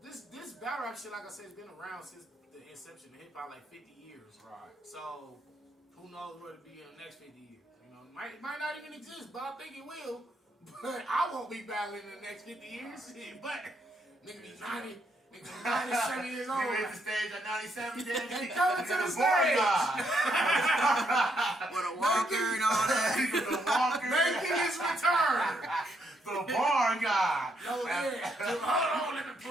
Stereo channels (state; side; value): normal; both; correlation 0.75